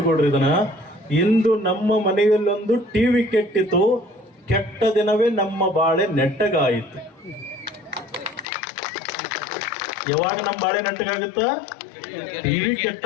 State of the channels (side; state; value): right; drops out; at 8.5 s